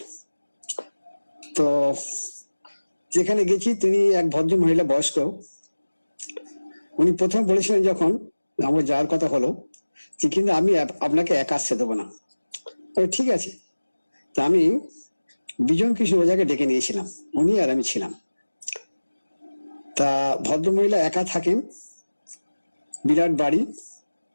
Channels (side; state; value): both; inverted; correlation -1.00